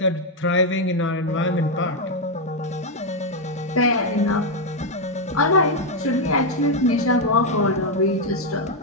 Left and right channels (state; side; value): normal; both; correlation 0.02